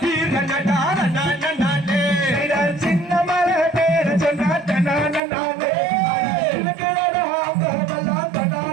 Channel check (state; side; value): drops out; left; at 5.2 s